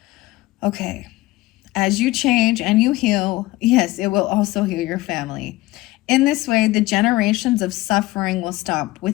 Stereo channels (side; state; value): right; quieter; 18.7 dB